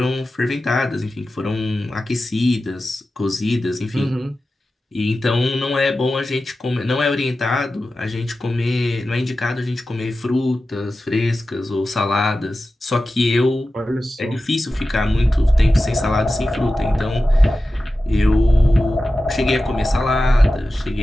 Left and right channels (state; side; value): normal; both; correlation 0.94